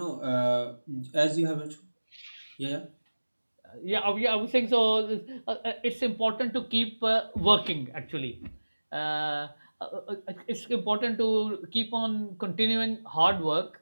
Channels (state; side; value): inverted; both; correlation -1.00